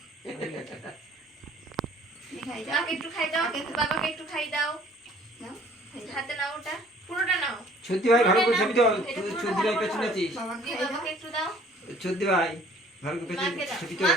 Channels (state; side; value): normal; both; correlation 0.55